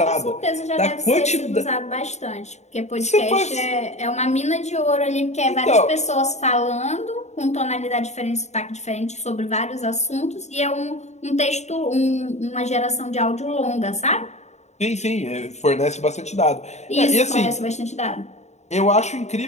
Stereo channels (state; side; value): late; right; 0.33 ms